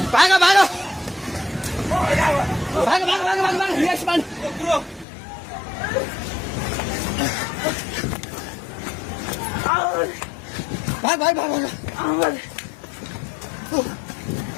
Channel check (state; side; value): drops out; right; at 5.1 s